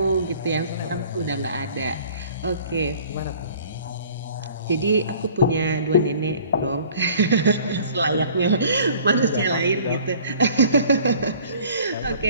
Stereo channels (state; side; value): inverted; both; correlation -0.51